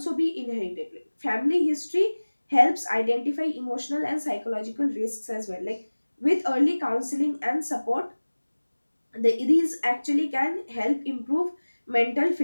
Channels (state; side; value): inverted; both; correlation -1.00